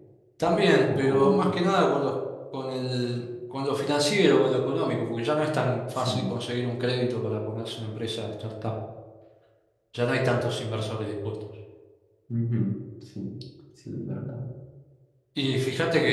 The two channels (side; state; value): both; identical; correlation 1.00